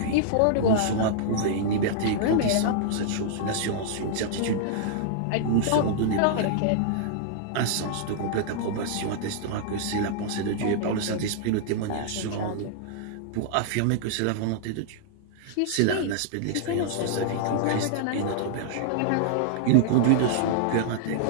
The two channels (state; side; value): different; both; correlation -0.01